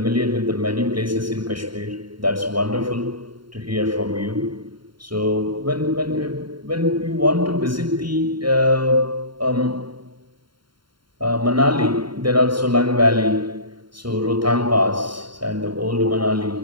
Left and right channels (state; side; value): late; left; 0.72 ms